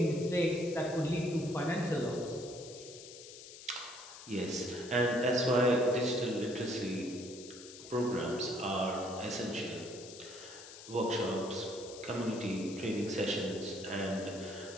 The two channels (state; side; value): noise; left; hiss, 15 dB below the sound